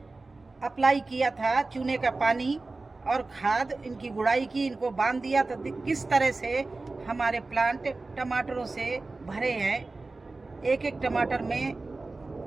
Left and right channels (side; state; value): left; quieter; 3.5 dB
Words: अप्लाई किया था चूने का पानी और खाद, इनकी गुड़ाई की, इनको बांध दिया, तो किस तरह से हमारे प्लांट टमाटरों से भरे हैं। एक एक टमाटर में,